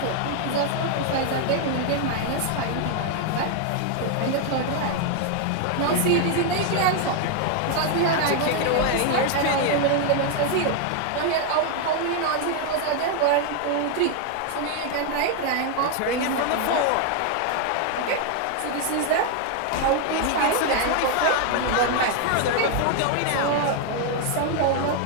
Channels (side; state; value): both; different; correlation 0.00